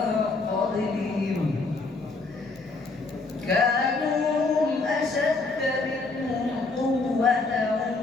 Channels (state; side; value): quieter; right; 3.7 dB